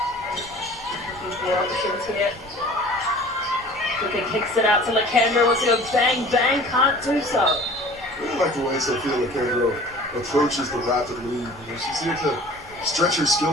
Options here. Luka kicks it out to Lakandra, wants to go bang, bang, can't do so. I really like the way Sophia Lakandra approaches the rapid lead. She's here to stretch her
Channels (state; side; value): normal; both; correlation 0.45